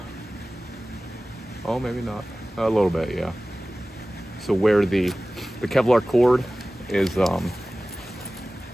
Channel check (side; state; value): both; normal; correlation 0.97